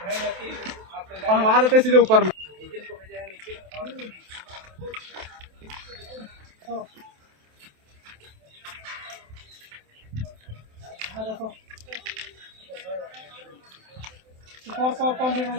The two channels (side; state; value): left; late; 27 ms